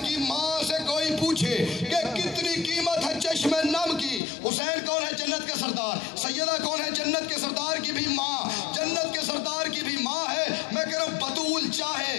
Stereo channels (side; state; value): right; drops out; at 4.2 s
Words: کی ماں سے کوئی پوچھے کہ کتنی قیمت ہے چشم نم کی. حسین کون ہے؟ جنت کے سردار. سیدہ کون ہے؟ جنت کے سردار کی بھی ماں، جنت کے سردار کی بھی ماں ہے. میں کہہ رہا ہوں بطول چاہے